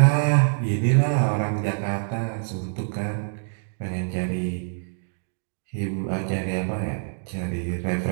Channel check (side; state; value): left; silent; digital silence